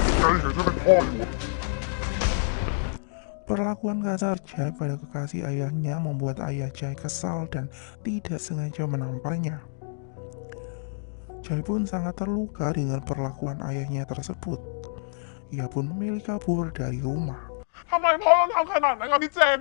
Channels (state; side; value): silent; right; digital silence